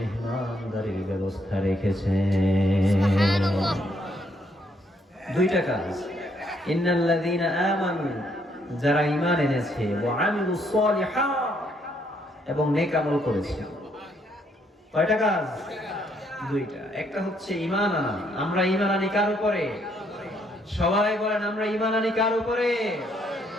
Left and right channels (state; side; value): normal; both; correlation 0.71